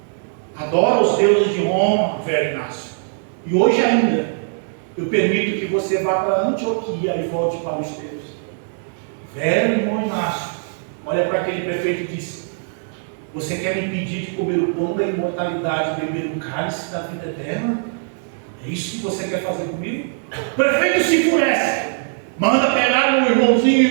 Adora os deuses de Roma, velho Inácio. E hoje ainda, eu permito que você vá para Antioquia e volte para os teus. Velho irmão Inácio, olha para aquele prefeito e diz: você quer me impedir de comer o pão da imortalidade e beber o cálice da vida eterna? É isso que você quer fazer comigo? O prefeito se enfurece, manda pegar o irmãozinho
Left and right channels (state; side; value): silent; left; digital silence